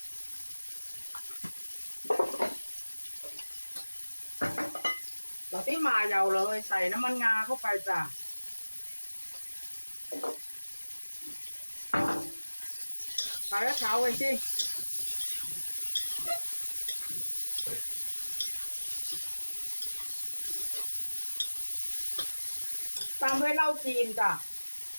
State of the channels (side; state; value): both; inverted; correlation -1.00